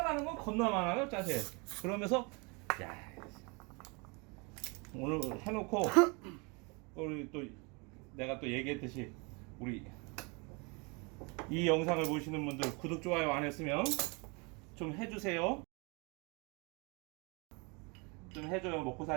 건 겁나 많아요, 짜세. 그러면서 야 오늘 해놓고 우리 또 내가 또 얘기했듯이 우리 이 영상을 보시는 분들 구독 좋아요 안 했으면 좀 해주세요. 좀 해줘요. 먹고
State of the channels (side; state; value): left; quieter; 30.4 dB